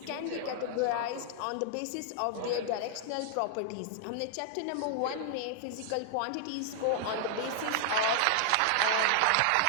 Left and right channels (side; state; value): both; different; correlation 0.00